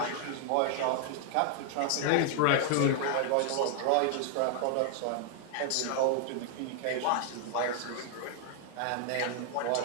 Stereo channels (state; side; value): different; both; correlation 0.00